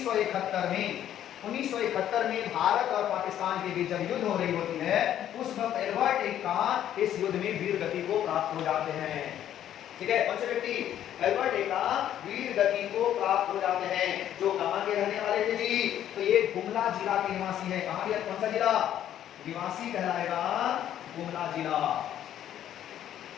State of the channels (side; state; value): right; quieter; 11.0 dB